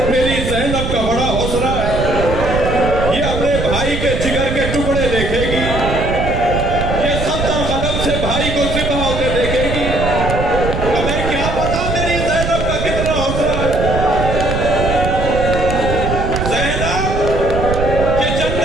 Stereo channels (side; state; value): right; noise; rumble, 3 dB below the sound